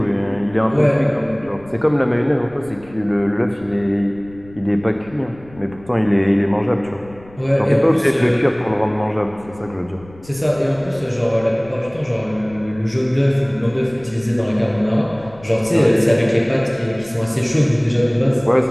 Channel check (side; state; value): left; noise; rumble, 22 dB below the sound